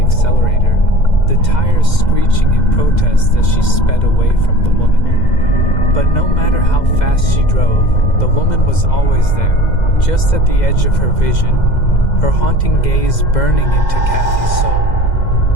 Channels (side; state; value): right; late; 2.0 ms